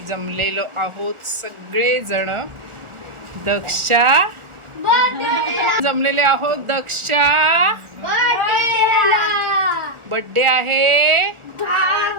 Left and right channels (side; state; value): left; late; 1.4 ms